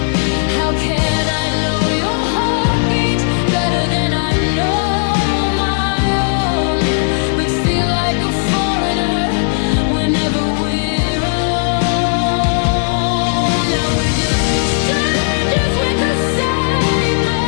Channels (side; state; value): right; silent; 69 dB below the other